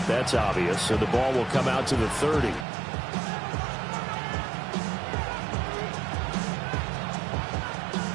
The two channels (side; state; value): left; drops out; at 2.7 s